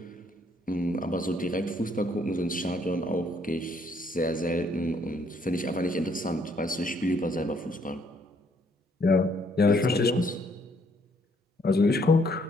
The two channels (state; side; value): normal; both; correlation 0.67